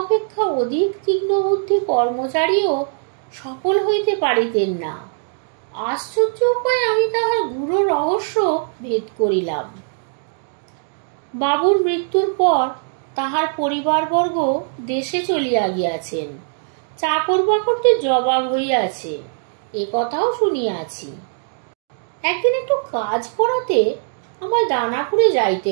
অপেক্ষা অধিক তীক্ষ্ণ বুদ্ধি কর্মচারীও সফল হইতে পারিতেন না। আশ্চর্য উপায়ে আমি তাহার গূঢ় রহস্য ভেদ করিলাম। বাবুর মৃত্যুর পর তাহার পরিবারবর্গ দেশে চলিয়া গিয়াছেন। চাকর বাকরদের জবাব হইয়াছে, এ কথাও শুনিয়াছি। একদিন একটু কাজ করাতে আমার দানাপুরে যাইতে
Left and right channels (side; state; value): left; silent; digital silence